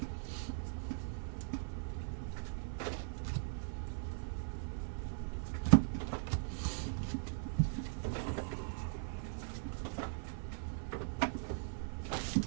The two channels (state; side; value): silent; left; 51 dB below the other